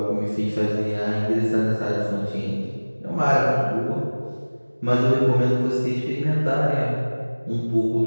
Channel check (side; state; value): both; inverted; correlation -1.00